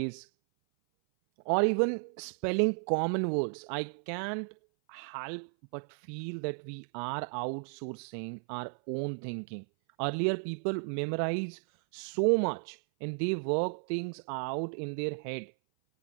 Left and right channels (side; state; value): left; silent; 55 dB below the other